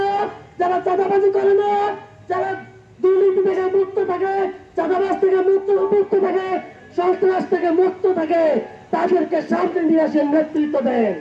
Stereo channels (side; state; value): both; identical; correlation 1.00